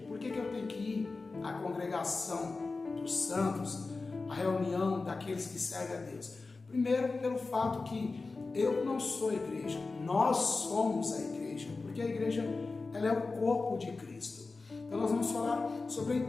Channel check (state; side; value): quieter; right; 3.8 dB